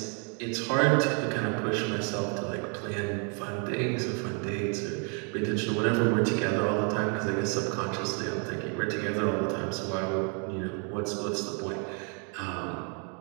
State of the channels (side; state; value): left; quieter; 38.5 dB